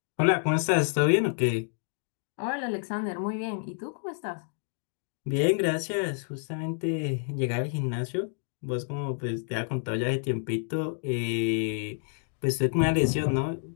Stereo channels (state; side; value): silent; right; digital silence